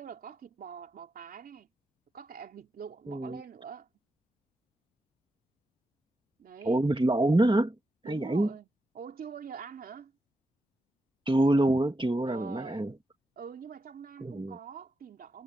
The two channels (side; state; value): both; normal; correlation 0.86